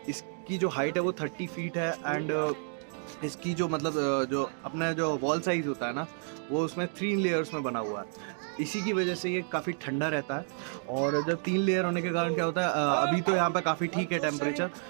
जो हाइट है वो 30 फीट है, एंड इसकी जो मतलब जो अपना जो वॉल साइज़ होता है ना, वो उसमें 3 लेयर्स में बना हुआ है। इसी की वजह से ये काफ़ी ठंडा रहता है। और जब 3 लेयर होने के कारण क्या होता है, अभी तो यहाँ पे काफ़ी ठीक है टेम्परेचर,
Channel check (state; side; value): silent; left; 57 dB below the other